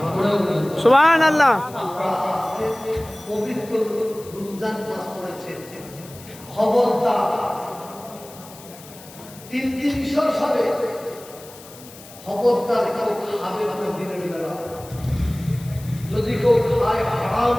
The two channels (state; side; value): noise; left; hiss, 19 dB below the sound